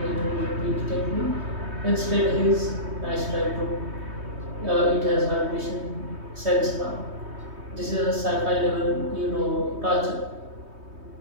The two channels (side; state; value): left; late; 3.2 ms